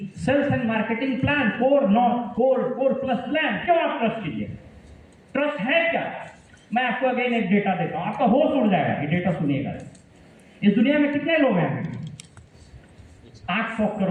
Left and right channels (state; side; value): identical; both; correlation 1.00